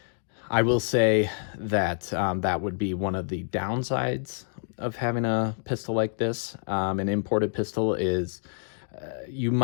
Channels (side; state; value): right; silent; 60 dB below the other